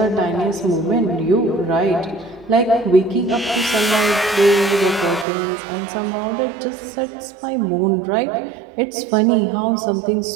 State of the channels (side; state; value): left; drops out; at 5.2 s